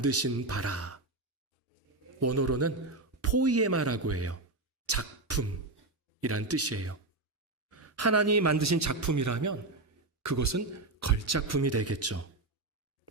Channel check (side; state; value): left; quieter; 3.1 dB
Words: 바라. 원어로는 포이에마라고 해요. 작품이란 뜻이에요. 하나님이 만드신 작품이라면 그것은 걸작품이 되겠죠.